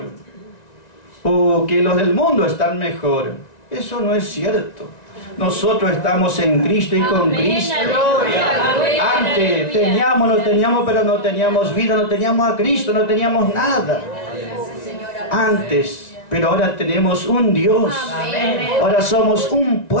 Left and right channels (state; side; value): late; right; 1.9 ms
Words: o que los del mundo están mejor, eso no es cierto. nosotros estamos en Cristo y con Cristo. Antes teníamos, no teníamos, pero no teníamos vida, no teníamos a Cristo, no teníamos nada. Antes. Pero ahora tenemos un Dios. Ahora somos un